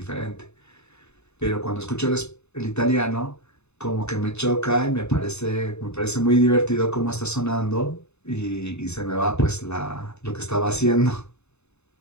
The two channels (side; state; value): right; late; 0.81 ms